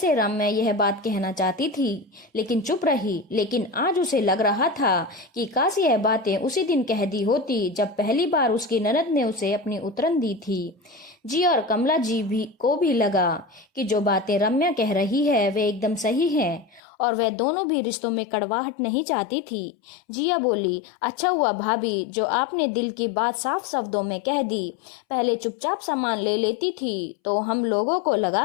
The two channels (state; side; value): drops out; right; at 16.8 s